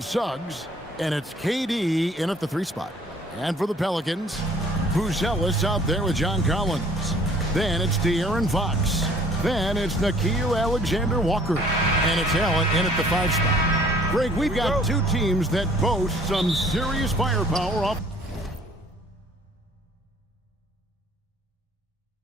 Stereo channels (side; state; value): both; normal; correlation 0.56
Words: Suggs. And it's KD in at the 3 spot. And for the Pelicans, Buzelis out there with John Collins. Then it's De'Aaron Fox. Then it's Nickeil Alexander-Walker. And it's Allen in at the 5 spot. Greg, we've got two teams that boast some serious firepower off.